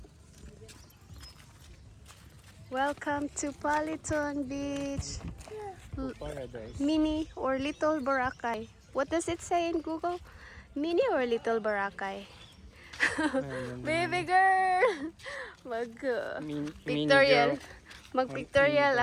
Welcome to Politon Beach. Paradise. Mini or Little Boracay. What does it say in Google? Mini or Little Boracay? Baby girl! Mag-pictorial. Mag-pictorial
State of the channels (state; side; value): identical; both; correlation 1.00